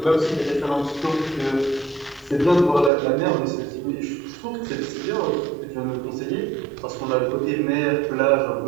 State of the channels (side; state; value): left; drops out; at 2.9 s